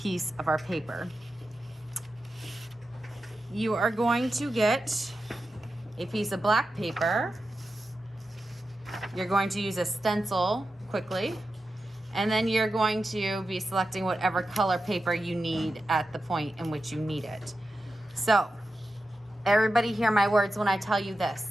of our paper. You are going to get a piece of black paper. You're going to use a stencil quickly. And then you're going to be selecting whatever color paper you need at the point in which you need it. So, everybody hear my words when I tell you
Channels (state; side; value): normal; both; correlation 0.91